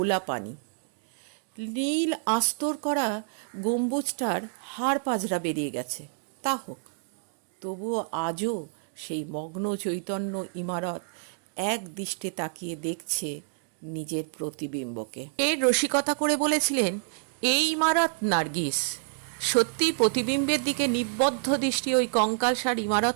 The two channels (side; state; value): left; silent; digital silence